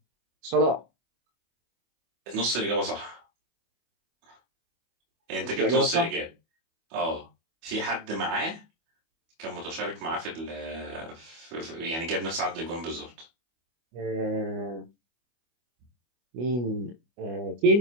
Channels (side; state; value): left; late; 25 ms